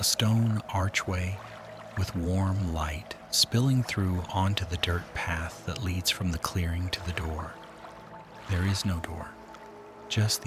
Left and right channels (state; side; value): identical; both; correlation 1.00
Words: stone archway with warm light spilling through onto the dirt path that leads from the clearing to the door. There is no door, just